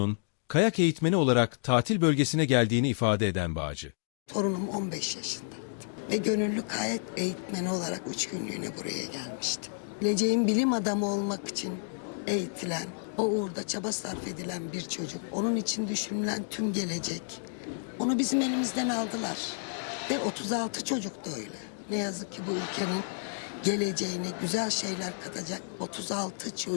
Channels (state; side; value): silent; right; digital silence